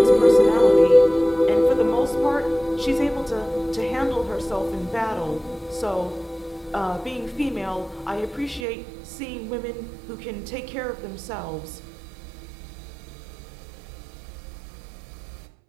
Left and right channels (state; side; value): drops out; left; at 8.7 s